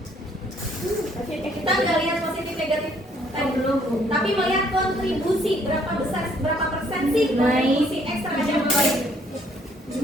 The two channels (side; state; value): both; normal; correlation 0.65